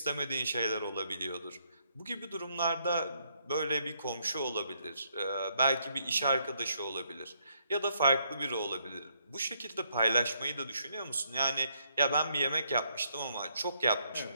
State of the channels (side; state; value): both; inverted; correlation -0.73